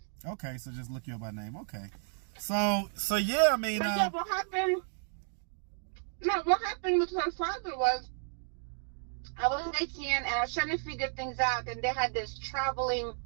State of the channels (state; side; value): silent; left; digital silence